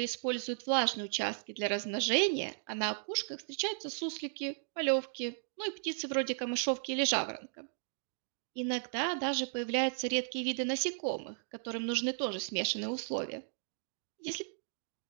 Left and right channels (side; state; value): left; silent; digital silence